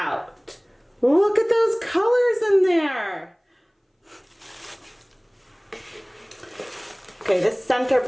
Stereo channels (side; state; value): both; identical; correlation 1.00